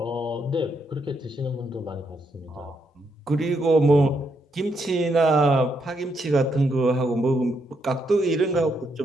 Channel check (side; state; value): both; normal; correlation 0.78